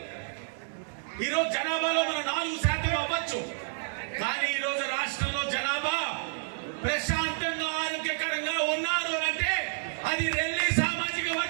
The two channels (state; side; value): silent; left; digital silence